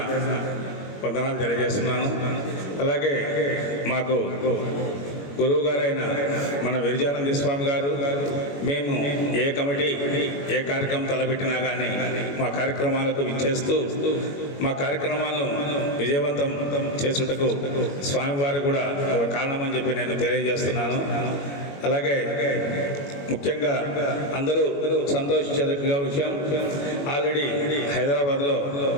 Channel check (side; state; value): right; late; 21 ms